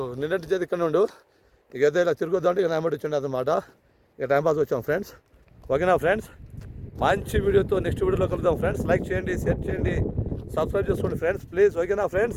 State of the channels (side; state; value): both; identical; correlation 1.00